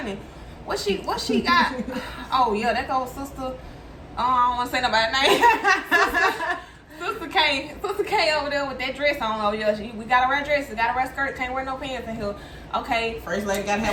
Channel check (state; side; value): identical; both; correlation 1.00